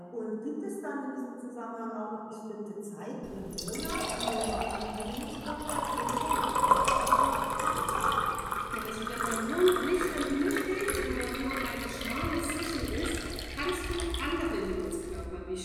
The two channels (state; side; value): identical; both; correlation 1.00